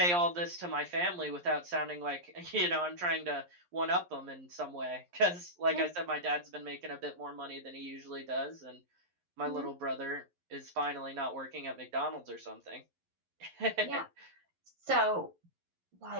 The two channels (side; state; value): left; late; 11 ms